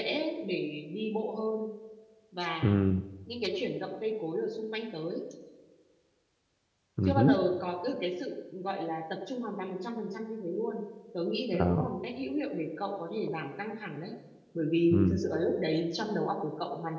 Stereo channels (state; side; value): identical; both; correlation 1.00